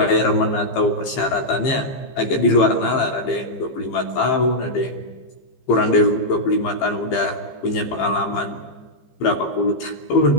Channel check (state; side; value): late; right; 15 ms